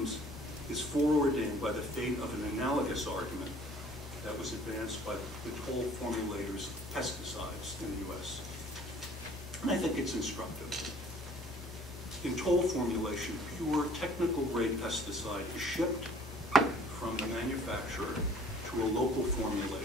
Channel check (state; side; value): normal; both; correlation 0.53